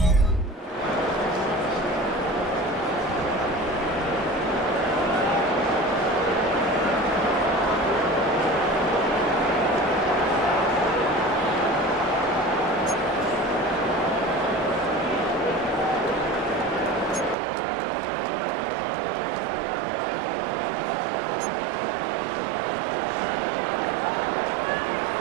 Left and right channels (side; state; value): left; drops out; at 17.4 s